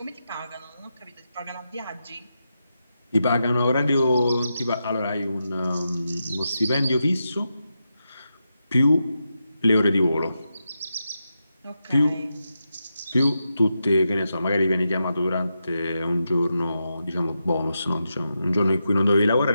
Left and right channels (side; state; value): both; inverted; correlation -0.87